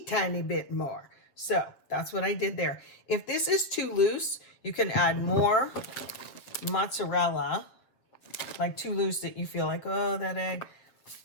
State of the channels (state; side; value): late; right; 7.6 ms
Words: tiny bit more. So that's what I did there. If this is too loose, you can add more mozzarella, like too loose that you feel like, oh, that egg,